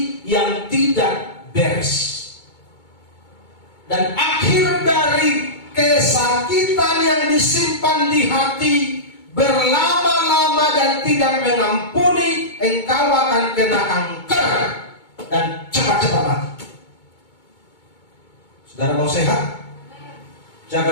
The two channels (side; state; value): right; late; 2.2 ms